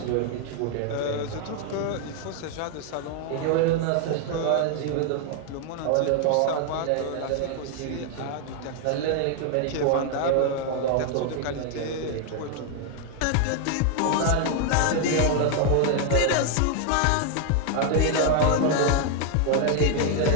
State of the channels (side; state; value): both; different; correlation 0.00